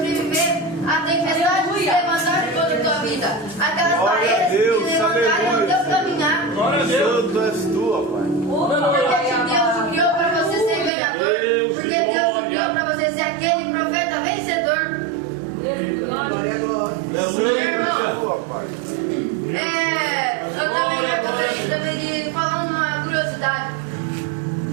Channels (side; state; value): left; drops out; at 10.9 s